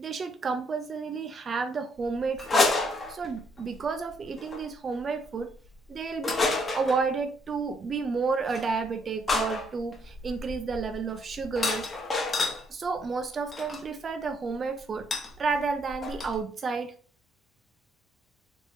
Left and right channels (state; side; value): normal; both; correlation 0.71